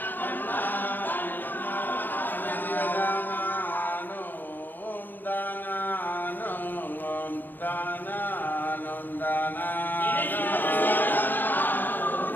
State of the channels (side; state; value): right; late; 0.090 ms